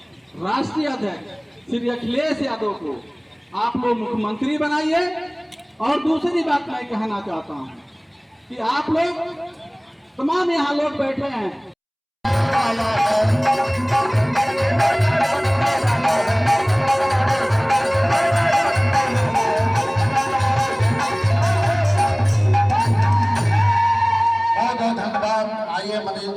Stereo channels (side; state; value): both; identical; correlation 1.00